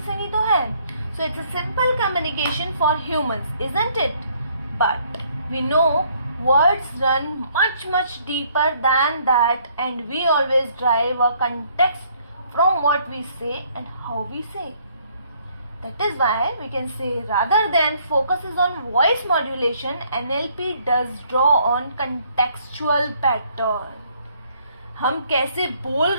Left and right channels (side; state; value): both; inverted; correlation -0.65